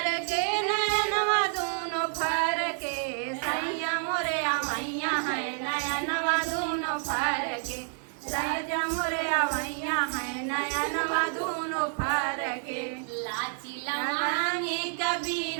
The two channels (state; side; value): silent; left; 57 dB below the other